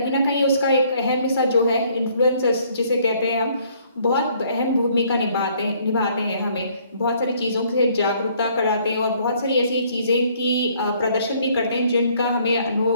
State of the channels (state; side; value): inverted; both; correlation -0.63